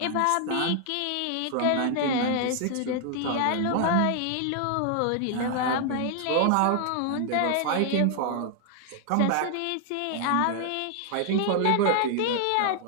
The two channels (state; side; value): different; both; correlation 0.00